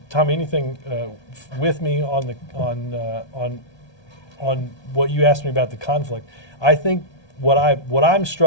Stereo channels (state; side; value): late; right; 1.2 ms